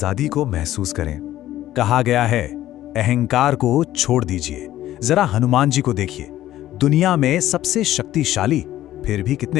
को महसूस करें। कहा गया है, अहंकार को छोड़ दीजिए। जरा हनुमान जी को देखिए, दुनिया में सबसे शक्तिशाली, फिर भी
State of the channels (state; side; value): quieter; right; 13.8 dB